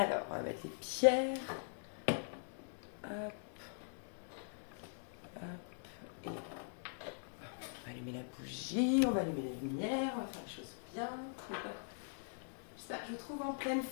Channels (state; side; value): silent; right; digital silence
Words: on va mettre les pierres. Hop, hop, et on va allumer la bougie, on va allumer les lumières, on va faire les choses bien. J'espère que je vous trouve en pleine